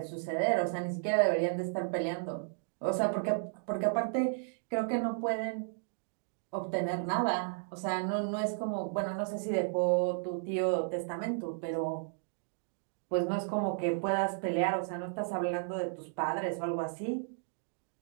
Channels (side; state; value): left; silent; digital silence